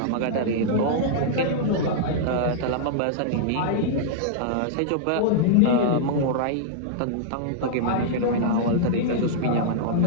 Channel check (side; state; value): both; different; correlation -0.02